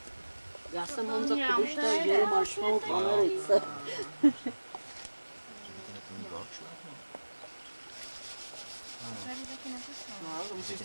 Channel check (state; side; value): inverted; both; correlation -1.00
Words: Já jsem Honza Kubišta, Jero Marshmallow v Americe. Tady taky nepustím. No, to musíš